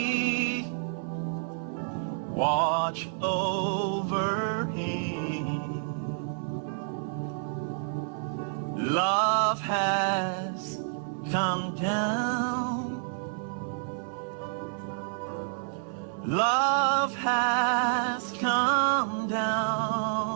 watch over him. Love has come down. Love has come down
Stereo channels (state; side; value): silent; left; 58 dB below the other